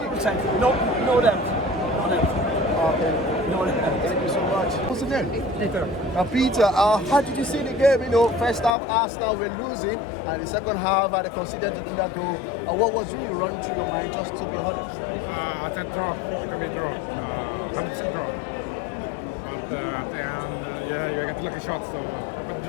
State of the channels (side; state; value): right; drops out; at 8.7 s